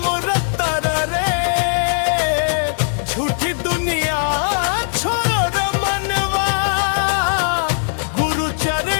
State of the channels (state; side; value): silent; right; 67 dB below the other